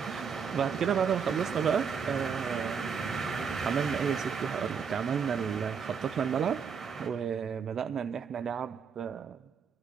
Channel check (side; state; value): left; quieter; 6.5 dB